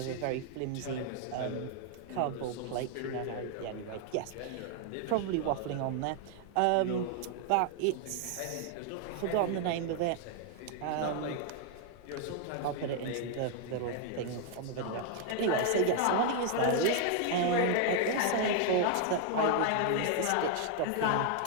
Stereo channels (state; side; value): different; both; correlation 0.00